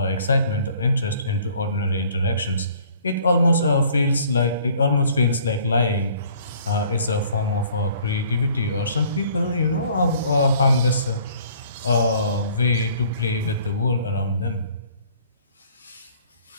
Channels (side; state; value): both; inverted; correlation -0.56